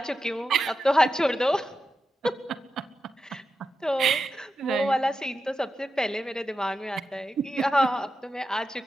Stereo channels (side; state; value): both; normal; correlation 0.89